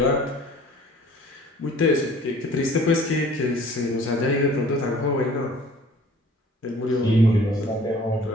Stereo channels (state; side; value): normal; both; correlation 0.51